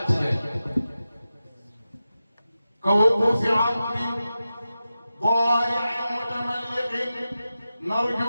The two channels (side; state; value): both; inverted; correlation -0.93